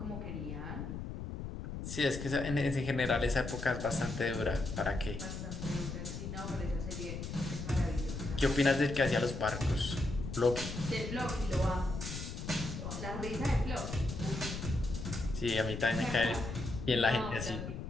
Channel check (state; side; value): noise; left; rumble, 6 dB below the sound